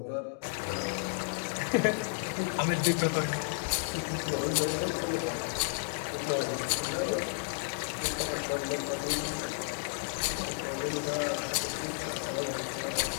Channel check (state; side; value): silent; right; digital silence